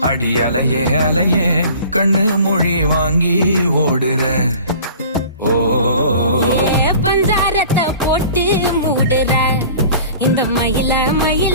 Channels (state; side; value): inverted; both; correlation -0.46